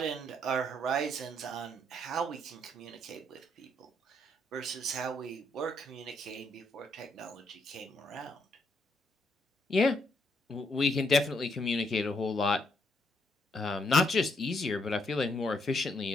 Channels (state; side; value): normal; both; correlation 0.75